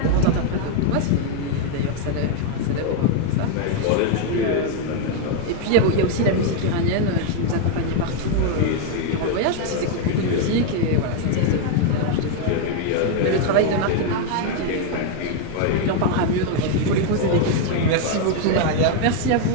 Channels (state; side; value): different; both; correlation 0.01